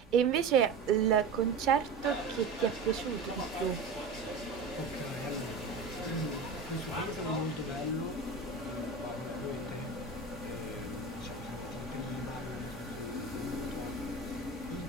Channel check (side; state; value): left; quieter; 4.3 dB